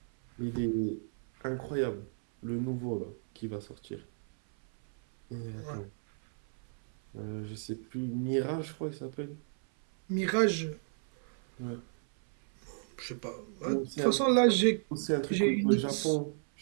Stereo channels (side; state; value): left; silent; 56 dB below the other